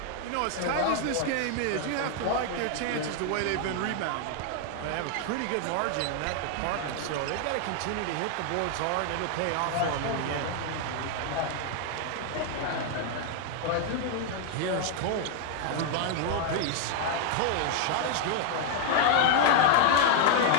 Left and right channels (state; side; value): different; both; correlation 0.00